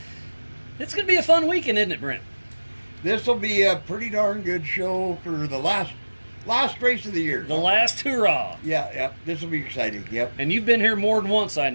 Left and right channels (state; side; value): inverted; both; correlation -1.00